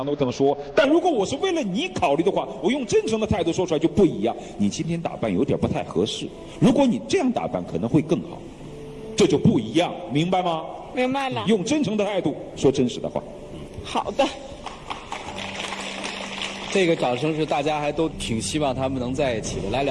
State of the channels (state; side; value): identical; both; correlation 1.00